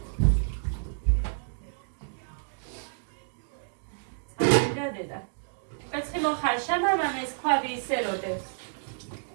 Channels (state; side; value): silent; left; digital silence